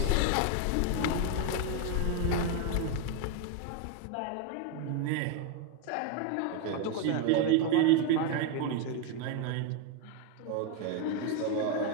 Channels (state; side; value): different; both; correlation 0.01